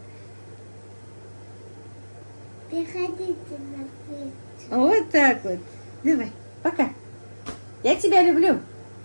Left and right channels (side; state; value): both; inverted; correlation -1.00